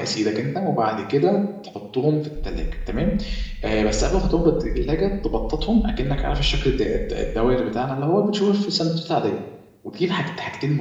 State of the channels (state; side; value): identical; both; correlation 1.00